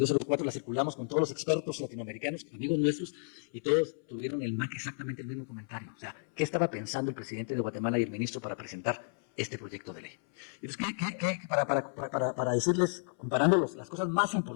la circulamos con todos los expertos latinoamericanos, amigos nuestros, y todos tuvieron exactamente el mismo comentario. O sea, ¿qué estaba pensando el presidente de Guatemala y el ministro para presentar este proyecto de ley? Entonces, para decirles, comparando las cosas más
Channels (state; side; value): silent; right; 56 dB below the other